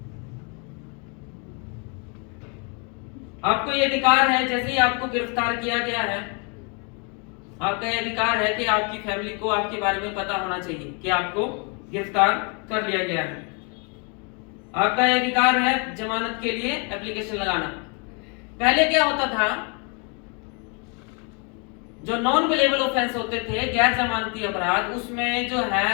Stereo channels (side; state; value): right; quieter; 35.1 dB